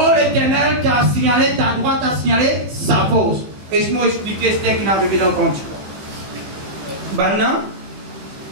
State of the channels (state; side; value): late; left; 16 ms